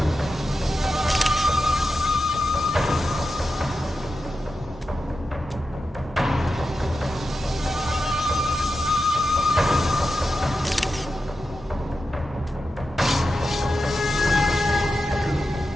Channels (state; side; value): normal; both; correlation 0.90